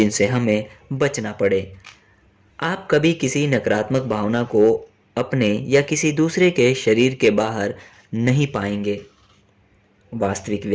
हमें बचना पड़े। आप कभी किसी नकारात्मक भावना को अपने या किसी दूसरे के शरीर के बाहर नहीं पाएंगे। वास्तविक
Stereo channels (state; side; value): identical; both; correlation 1.00